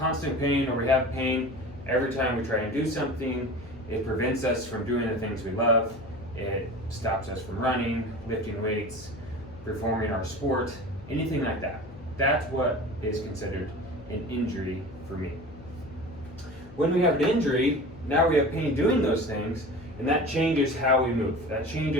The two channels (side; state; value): left; noise; hum, 18 dB below the sound